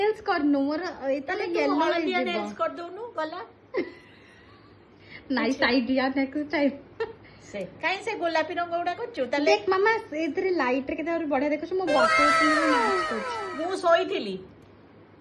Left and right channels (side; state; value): both; identical; correlation 1.00